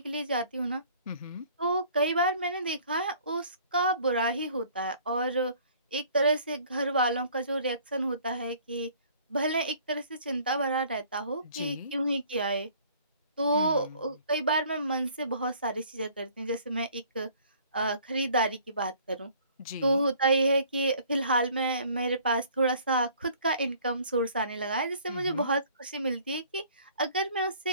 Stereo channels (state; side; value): inverted; both; correlation -0.55